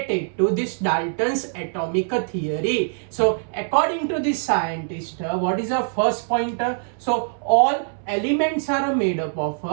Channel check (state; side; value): silent; left; 63 dB below the other